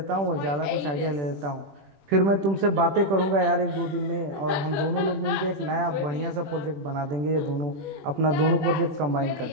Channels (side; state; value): left; late; 21 ms